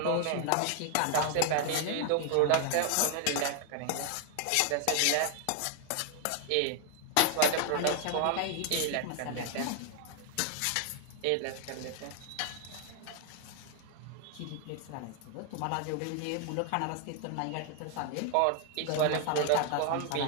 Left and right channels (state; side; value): different; both; correlation 0.00